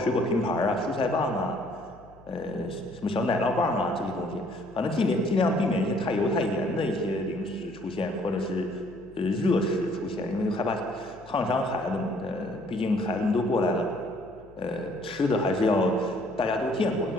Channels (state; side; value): noise; left; hum, 25 dB below the sound